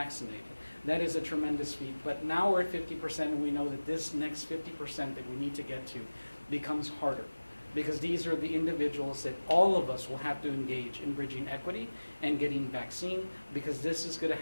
That is a tremendous feat. But now we're at 50%, and we know that this next 50% that we need to get to becomes harder, because these are the individuals that all of us will have to engage in bridging equity and getting vaccine, because this is going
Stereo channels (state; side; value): inverted; both; correlation -1.00